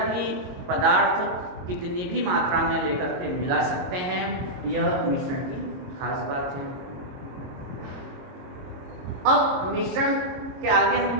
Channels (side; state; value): left; late; 22 ms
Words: भी पदार्थ कितनी भी मात्रा में लेकर के मिला सकते हैं, यह मिश्रण की खास बात है। अब मिश्रण के आगे हम